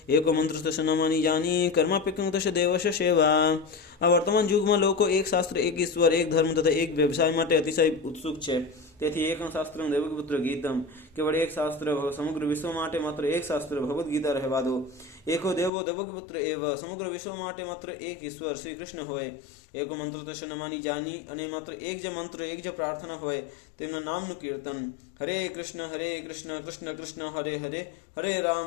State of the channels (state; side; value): drops out; right; at 15.7 s